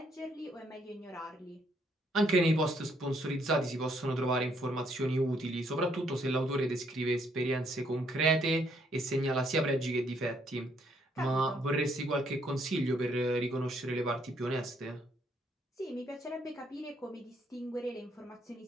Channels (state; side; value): normal; both; correlation 0.70